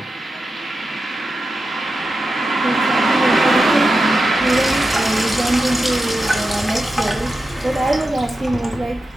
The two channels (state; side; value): normal; both; correlation 0.90